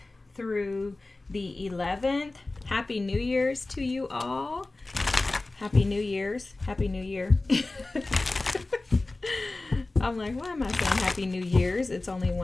through the 11th. Happy New Year's to you all. Happy New Year's. Happy New Year. I'm like, why am I saying Happy New Year's? It's only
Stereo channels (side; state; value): right; quieter; 3.1 dB